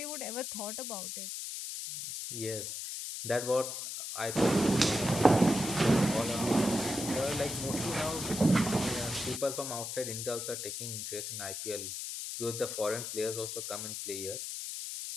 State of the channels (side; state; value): left; noise; hiss, 6 dB below the sound